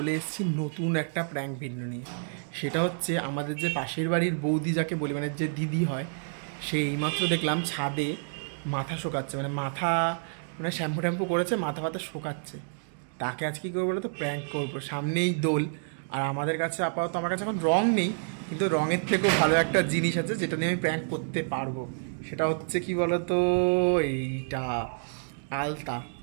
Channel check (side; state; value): left; silent; digital silence